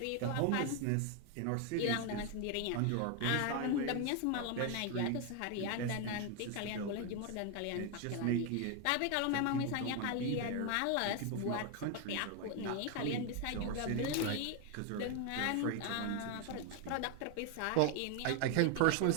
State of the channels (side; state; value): both; different; correlation 0.01